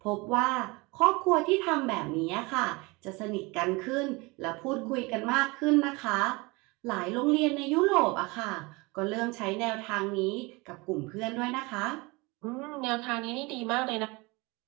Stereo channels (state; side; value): quieter; left; 25.3 dB